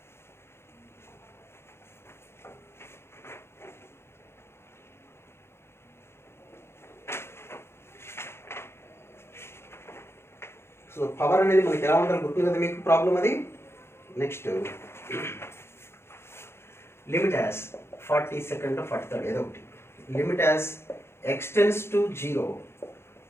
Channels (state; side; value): late; right; 0.12 ms